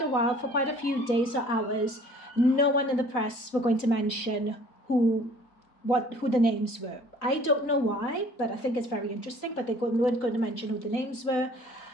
a while, for quite a few days or hours, no one in the press were going to mention who the names were. I don't know why, but I think it's very interesting, but they weren't going to mention who the names were.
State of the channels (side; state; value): right; late; 4.0 ms